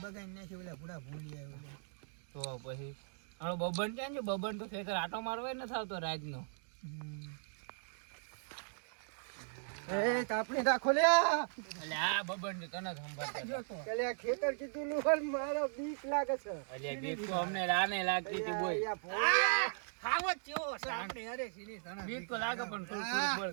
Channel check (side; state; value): left; silent; digital silence